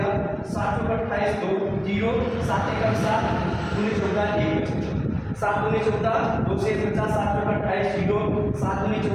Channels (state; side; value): identical; both; correlation 1.00